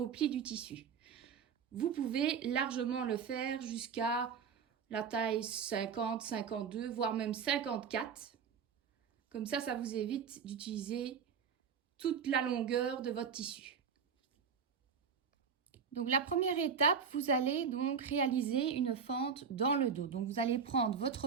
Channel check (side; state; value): left; quieter; 6.5 dB